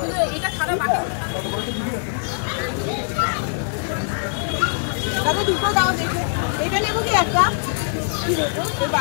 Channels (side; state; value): right; silent; digital silence